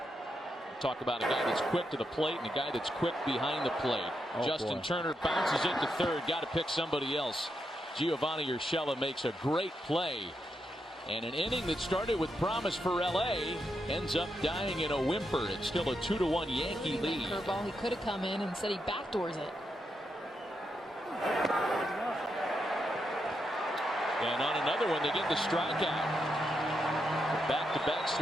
Talk about a guy that's quick to the plate and a guy that's quick behind the plate. Justin Turner bounces it to third, got to pick somebody else. Giovanni Urshela makes a great play And an inning that started with promise for LA ends up dying in a whimper. It's still a 2-1 Yankee lead. Curveball, he could have come in and said he backdoors it. And on another one, they get the strikeout. Back-to-back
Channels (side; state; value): both; normal; correlation 0.83